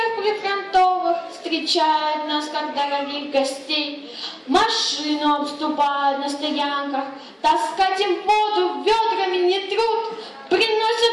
прифронтовых встречают нас, как дорогих гостей. Машину обступают на стоянках, таскать им воду ведрами не труд,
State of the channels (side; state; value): both; identical; correlation 1.00